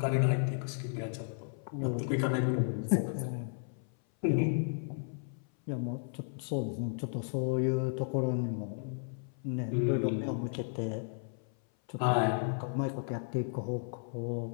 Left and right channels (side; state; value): right; silent; 55 dB below the other